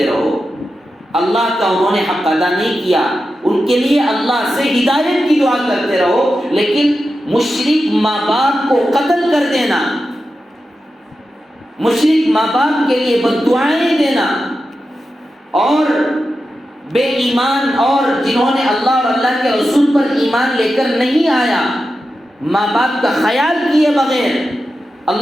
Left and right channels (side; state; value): both; normal; correlation 0.91